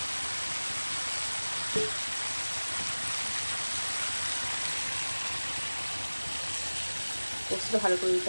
পোস্তটা ভালো করে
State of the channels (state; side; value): inverted; both; correlation -1.00